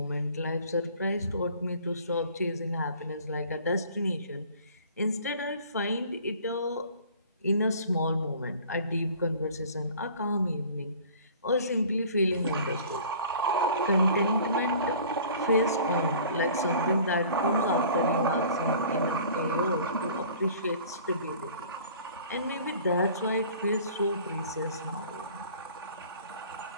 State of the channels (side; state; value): both; inverted; correlation -0.48